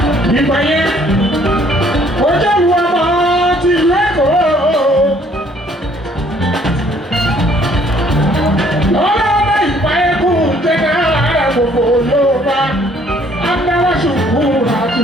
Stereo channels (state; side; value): normal; both; correlation 0.61